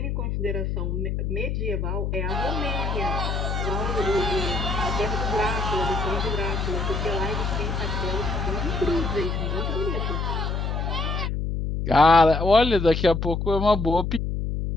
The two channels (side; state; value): left; noise; hum, 1 dB below the sound